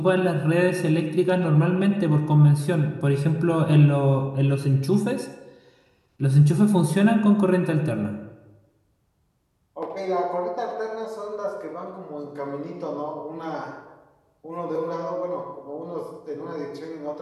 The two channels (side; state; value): both; identical; correlation 1.00